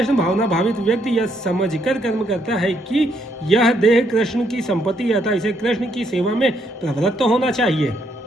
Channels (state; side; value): normal; both; correlation 0.73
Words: भावना भावित व्यक्ति यह समझकर कर्म करता है कि यह देह कृष्ण की संपत्ति है, अतः इसे कृष्ण की सेवा में प्रवृत्त होना चाहिए।